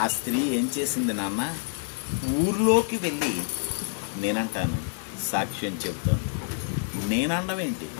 ఆ స్త్రీ ఏం చేసింది నాన్న? ఊర్లోకి వెళ్ళి నేనంటాను సాక్ష్యం చెబుతోంది. నేనండం ఏంటి?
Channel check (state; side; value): silent; right; 60 dB below the other